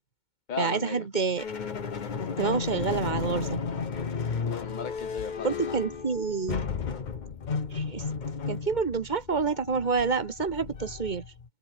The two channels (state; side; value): late; right; 2.2 ms